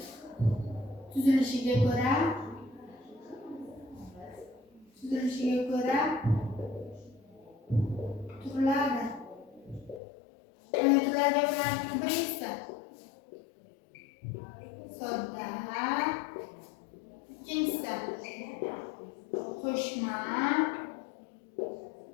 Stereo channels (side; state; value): right; drops out; at 10.0 s